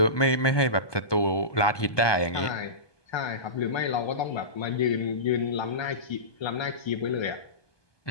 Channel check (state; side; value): late; right; 1.2 ms